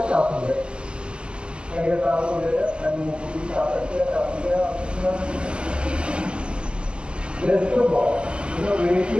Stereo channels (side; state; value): left; late; 0.055 ms